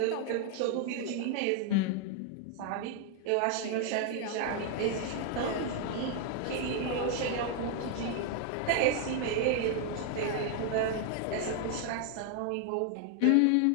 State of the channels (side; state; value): both; different; correlation 0.00